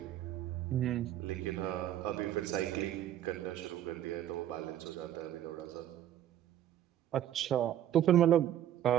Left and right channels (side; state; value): left; quieter; 11.5 dB